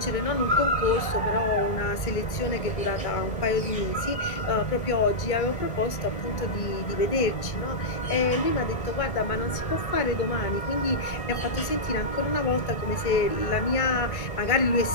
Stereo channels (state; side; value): late; right; 1.5 ms